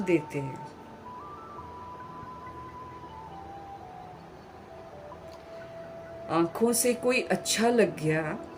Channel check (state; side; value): identical; both; correlation 1.00